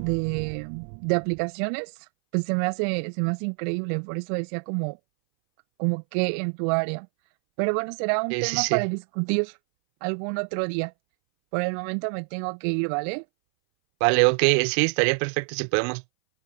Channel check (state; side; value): silent; left; 60 dB below the other